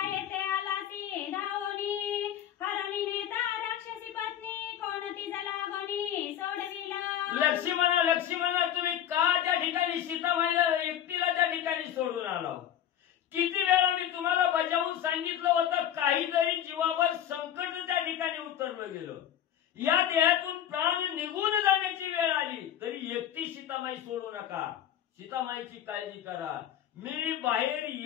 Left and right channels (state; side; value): quieter; right; 10.5 dB